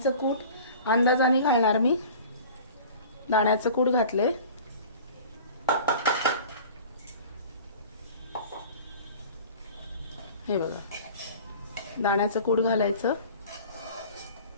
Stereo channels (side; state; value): both; inverted; correlation -0.42